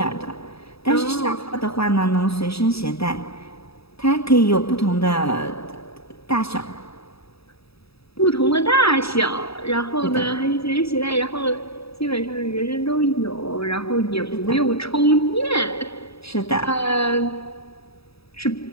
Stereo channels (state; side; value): late; right; 0.77 ms